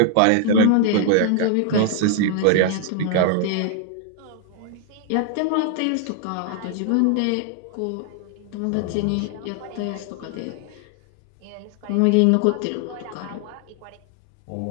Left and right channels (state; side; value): different; both; correlation 0.00